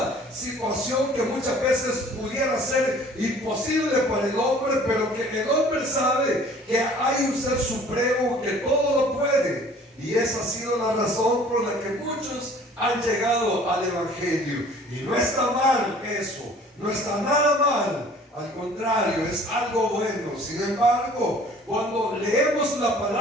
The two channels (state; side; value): normal; both; correlation 0.51